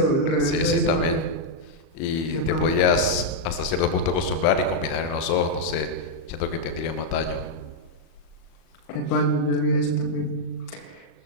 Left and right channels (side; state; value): right; late; 37 ms